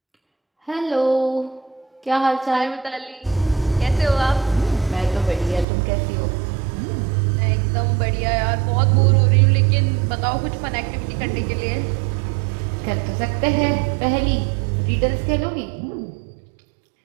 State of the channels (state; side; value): drops out; left; at 5.7 s